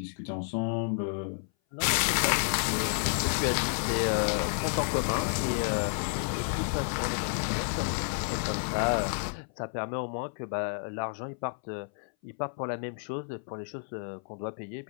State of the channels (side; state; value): right; silent; 57 dB below the other